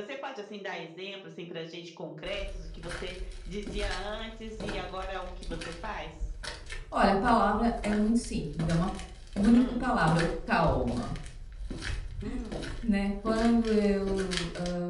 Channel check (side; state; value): both; identical; correlation 1.00